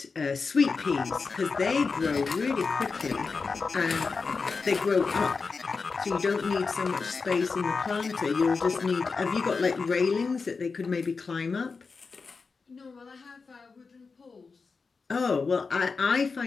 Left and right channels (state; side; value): quieter; right; 4.6 dB